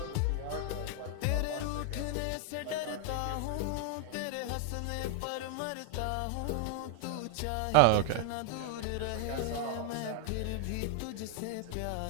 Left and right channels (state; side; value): different; both; correlation 0.00